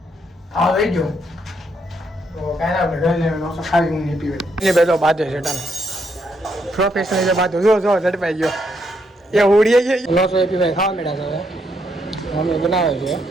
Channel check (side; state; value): both; normal; correlation 0.76